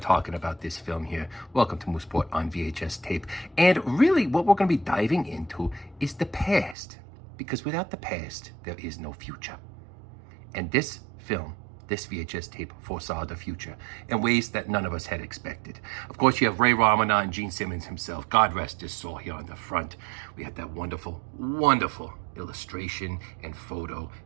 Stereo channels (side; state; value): left; drops out; at 6.8 s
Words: about this film here. Welcome to Moosport on VHS tape. And really what we're going to be diving into is the past. Because without the past, there is no future. And this film, this VHS tape, foresaw the future in ways that none of us had expected. Of course, you have Ray Romano and Gene Simmons himself. God rest his soul here on the front. We had that wonderful, wonderful illustration and photo